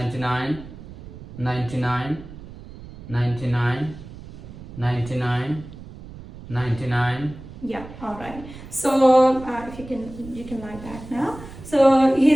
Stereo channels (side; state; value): right; noise; rumble, 15 dB below the sound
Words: 99, 99, 99, 99. Yeah, alright. So if you can lie back now. So